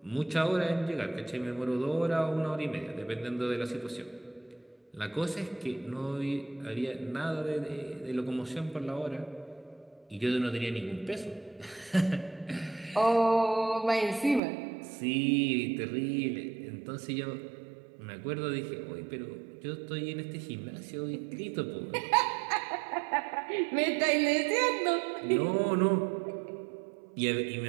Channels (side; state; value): left; drops out; at 14.4 s